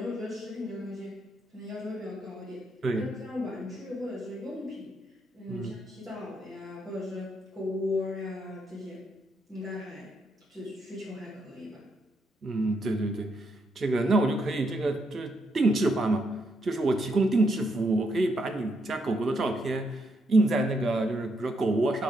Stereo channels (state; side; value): normal; both; correlation 0.77